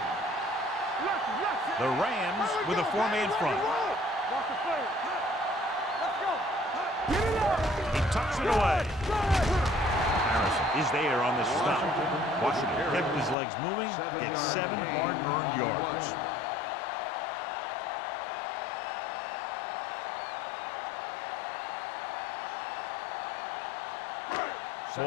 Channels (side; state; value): right; drops out; at 13.4 s